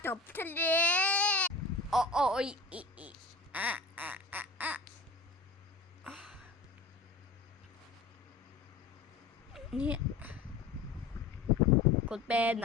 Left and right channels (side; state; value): right; quieter; 3.7 dB